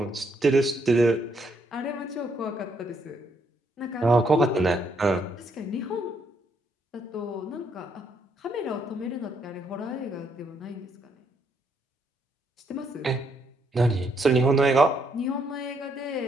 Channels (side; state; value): both; normal; correlation 0.73